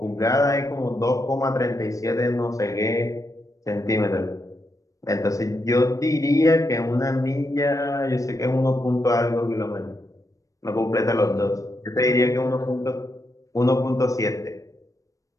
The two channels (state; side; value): late; right; 0.16 ms